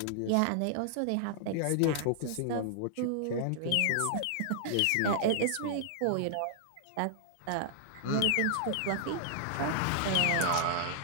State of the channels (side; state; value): both; different; correlation -0.01